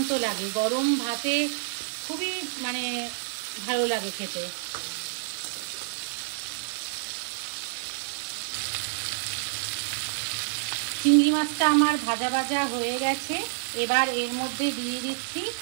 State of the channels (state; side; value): silent; left; digital silence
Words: লাগে। গরম ভাতে খুবই ভালো লাগে খেতে। চিংড়ি মাছটা আমার ভাজা ভাজা হয়ে গেছে। এবার এর মধ্যে দিয়ে দিচ্ছি